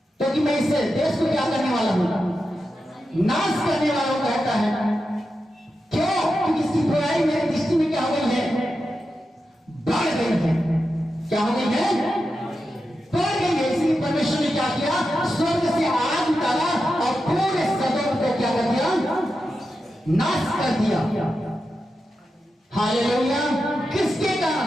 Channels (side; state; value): both; normal; correlation 0.89